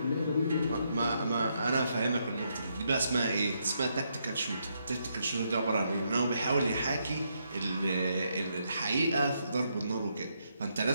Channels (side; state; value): both; inverted; correlation -0.78